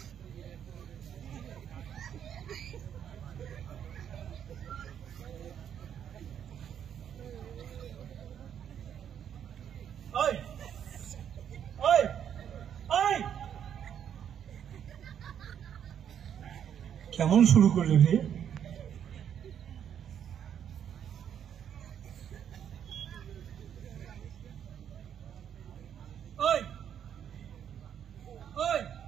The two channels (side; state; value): left; quieter; 9.0 dB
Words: কেমন শুরু করলে রে?